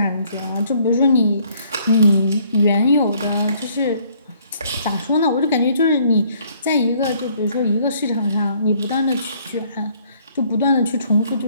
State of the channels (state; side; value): inverted; both; correlation -0.64